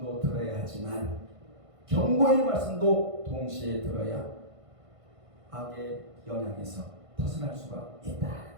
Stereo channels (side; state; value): left; late; 1.5 ms